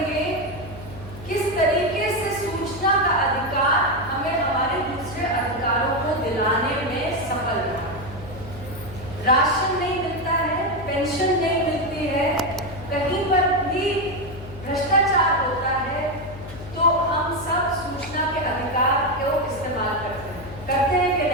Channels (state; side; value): noise; left; hum, 14 dB below the sound